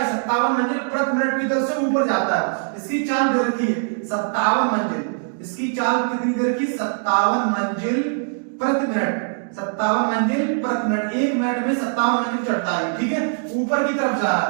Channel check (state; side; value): silent; left; digital silence